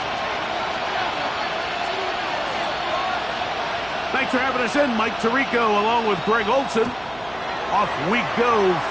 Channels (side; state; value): right; noise; hum, 22 dB below the sound